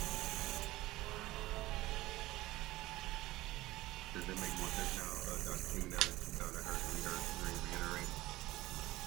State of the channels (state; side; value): quieter; left; 17.8 dB